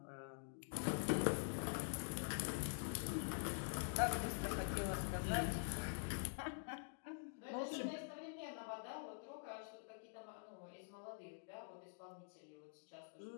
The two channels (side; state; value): right; silent; digital silence